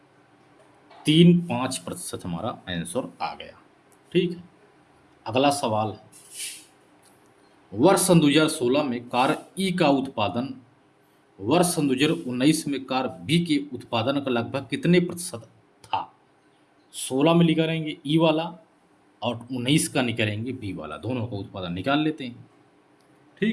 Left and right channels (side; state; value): both; identical; correlation 1.00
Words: हमारा आंसर आ गया, ठीक है। अगला सवाल है, वर्ष सन 2016 में कार ई का उत्पादन वर्ष सन 2019 में कार बी के उत्पादन का लगभग कितने प्रतिशत था? 16 में निकालेंगे ई वाला और 19 का निकालेंगे बी वाला, दोनों का उत्पादन निकाल लेते हैं,